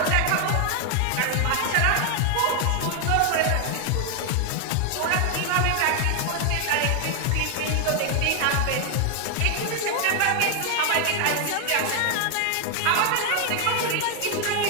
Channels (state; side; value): different; both; correlation 0.00